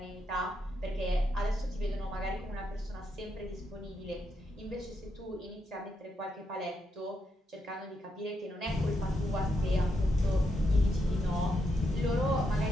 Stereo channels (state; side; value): normal; both; correlation 0.81